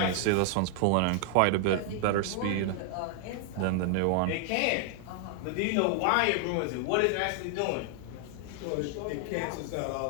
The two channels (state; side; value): different; both; correlation 0.00